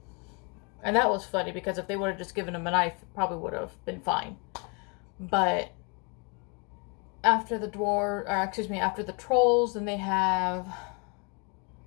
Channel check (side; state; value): right; quieter; 33.4 dB